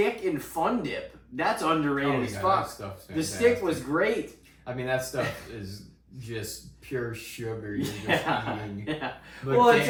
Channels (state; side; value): identical; both; correlation 1.00